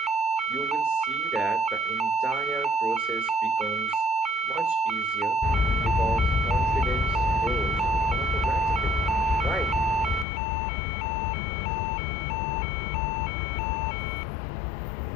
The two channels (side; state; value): right; drops out; at 10.2 s